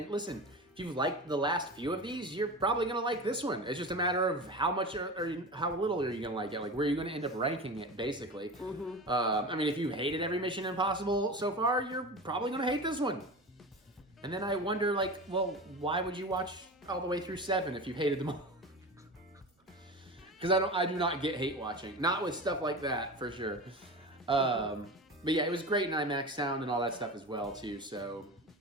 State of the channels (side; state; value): both; normal; correlation 0.29